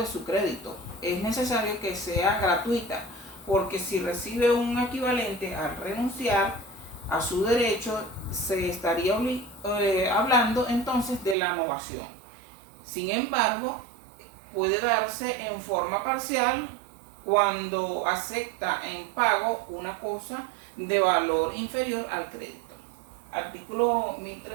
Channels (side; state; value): left; drops out; at 11.4 s